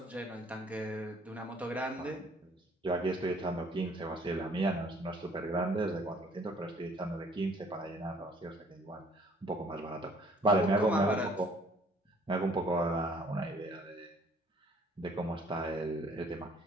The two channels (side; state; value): both; normal; correlation 0.59